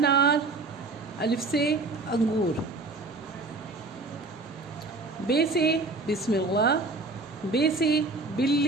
अलिफ से अंगूर। बे से बिस्मिल्लाह, बे से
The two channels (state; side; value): quieter; left; 3.5 dB